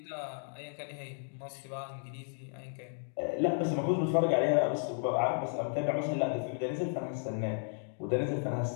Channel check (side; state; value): right; silent; 55 dB below the other